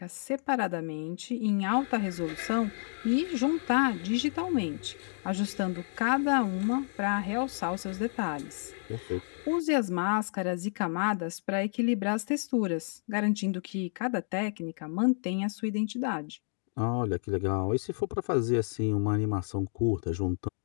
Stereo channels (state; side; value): silent; right; digital silence